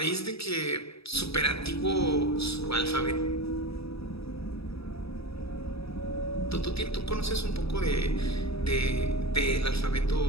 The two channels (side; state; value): right; late; 0.77 ms